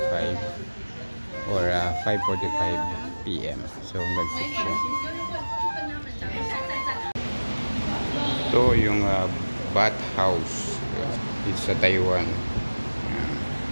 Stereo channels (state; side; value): inverted; both; correlation -1.00